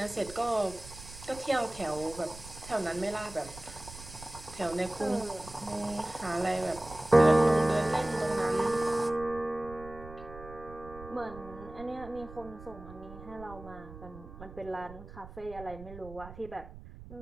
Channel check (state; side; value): noise; right; rumble, 15 dB below the sound